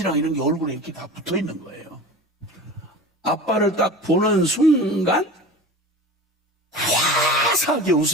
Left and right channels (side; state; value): both; normal; correlation 0.35